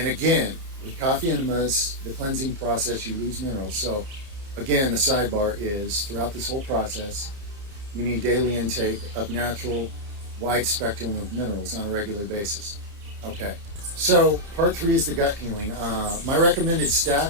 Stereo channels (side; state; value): left; late; 30 ms